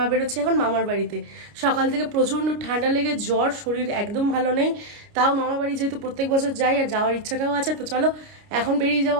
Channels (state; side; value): late; left; 29 ms